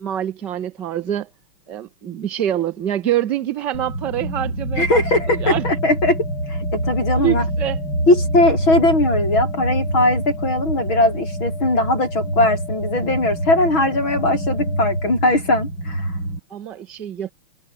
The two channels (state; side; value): late; right; 6.2 ms